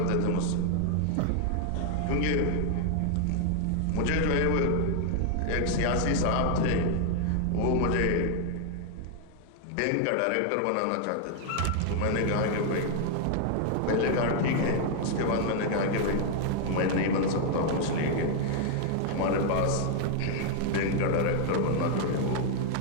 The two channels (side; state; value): both; different; correlation 0.00